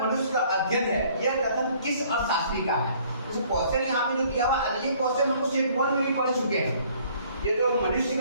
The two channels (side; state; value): both; inverted; correlation -0.59